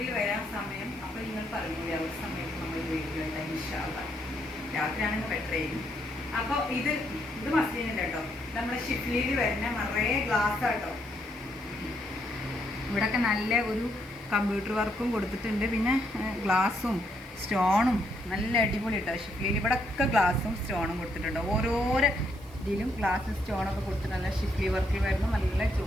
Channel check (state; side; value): noise; left; hiss, 26 dB below the sound